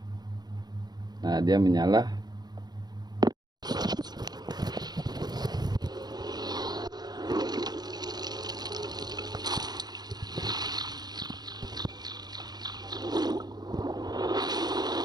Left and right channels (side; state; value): left; late; 0.20 ms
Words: Nah, dia menyala.